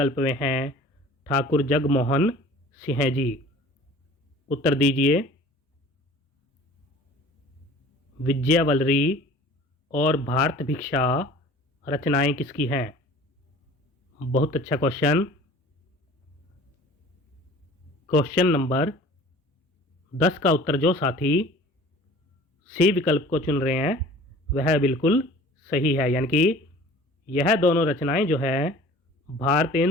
में है ठाकुर जगमोहन सिंह जी। उत्तर दीजिए। विजयवल्लरी और भारत भिक्षा रचनाएं किसकी हैं? बहुत अच्छा क्वेश्चन। क्वेश्चन नंबर 10 का उत्तर जो साथी सी विकल्प को चुन रहे हैं वह बिल्कुल सही है, यानी कि यह दोनों रचनाएं जो है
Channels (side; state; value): both; normal; correlation 0.46